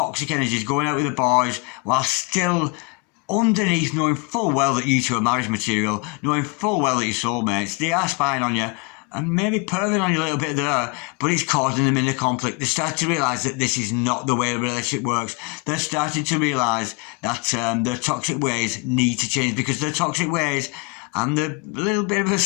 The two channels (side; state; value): right; quieter; 29.0 dB